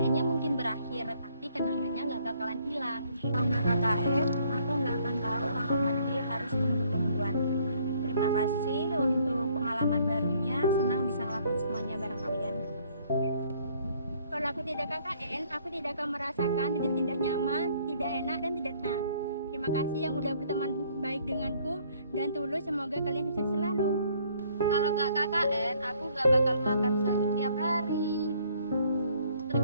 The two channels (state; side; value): inverted; both; correlation -0.63